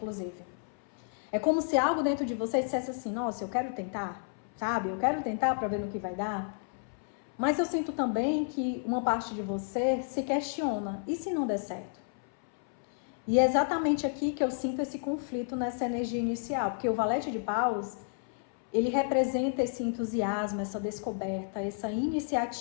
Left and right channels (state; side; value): silent; right; 57 dB below the other